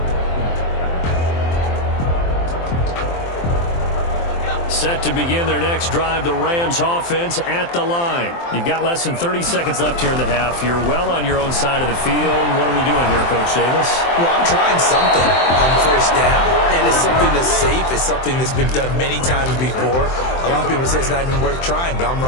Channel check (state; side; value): late; right; 23 ms